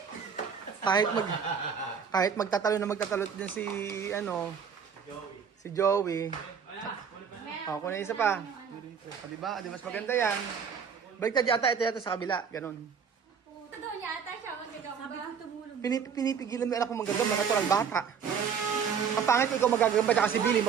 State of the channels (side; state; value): left; quieter; 6.9 dB